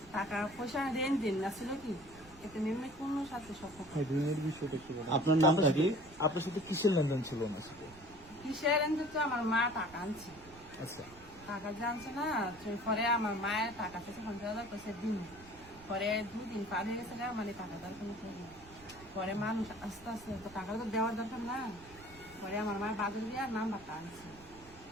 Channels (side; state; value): right; noise; rumble, 21 dB below the sound